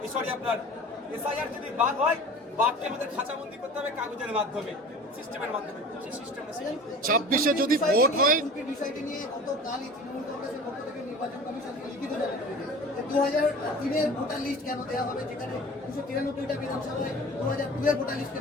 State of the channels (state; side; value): normal; both; correlation 0.40